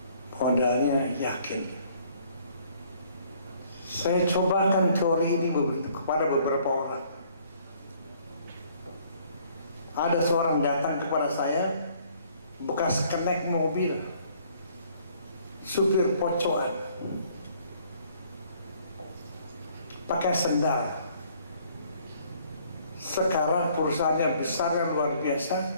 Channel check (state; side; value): inverted; both; correlation -0.61